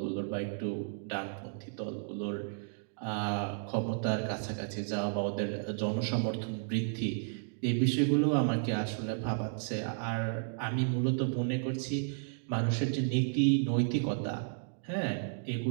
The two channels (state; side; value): silent; left; digital silence